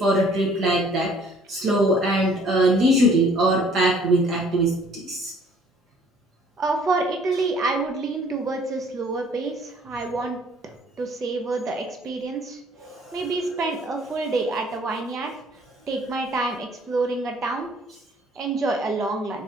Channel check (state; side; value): normal; both; correlation 0.58